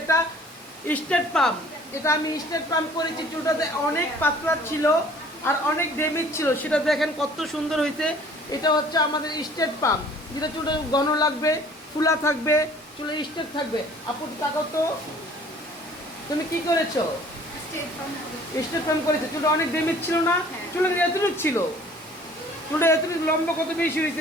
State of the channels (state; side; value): normal; both; correlation 0.52